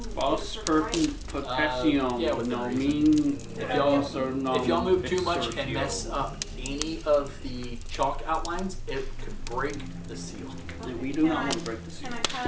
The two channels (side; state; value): both; identical; correlation 1.00